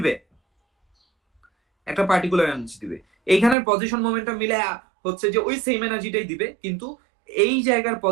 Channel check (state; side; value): drops out; left; at 3.6 s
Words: একটা পার্টিকুলার এনার্জি দিবে। এইখানের পজিশন মোমেন্টাম মিলে হচ্ছে যে ওই সেম এনার্জিটাই দিবে, কিন্তু এই জায়গার